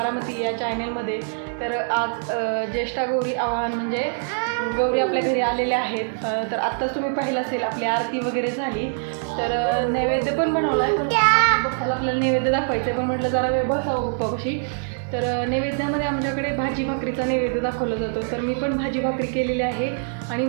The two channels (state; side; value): silent; left; digital silence